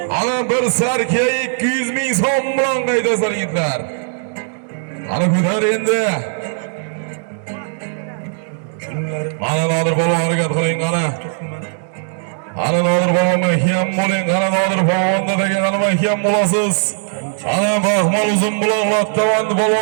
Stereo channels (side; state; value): left; silent; digital silence